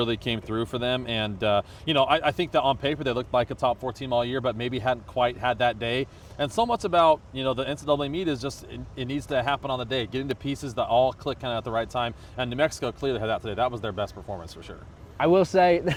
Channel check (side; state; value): both; identical; correlation 1.00